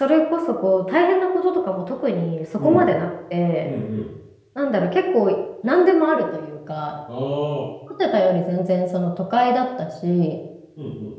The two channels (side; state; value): both; identical; correlation 1.00